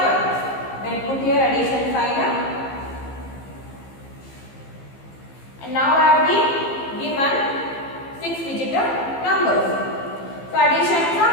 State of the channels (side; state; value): right; late; 15 ms